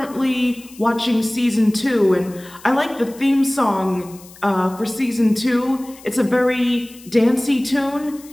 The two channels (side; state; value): left; noise; hiss, 22 dB below the sound